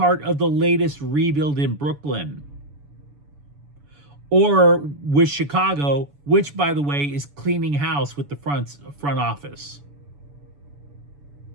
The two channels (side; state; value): left; late; 7.0 ms